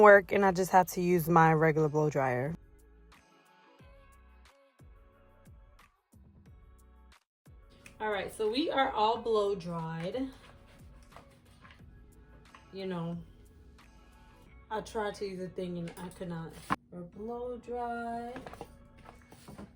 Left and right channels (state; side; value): identical; both; correlation 1.00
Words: work, and I just had to use my regular blow dryer. All right, so we are all blow dried. You know, I tried to use a thing and I could not. We're blow dried.